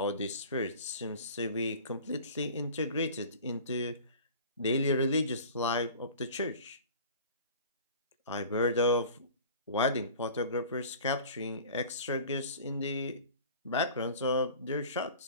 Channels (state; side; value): inverted; both; correlation -0.42